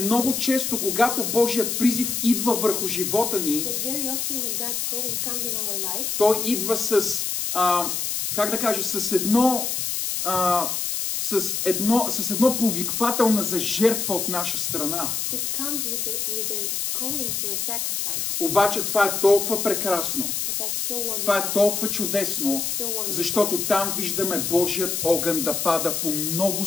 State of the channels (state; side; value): noise; left; hiss, 1 dB below the sound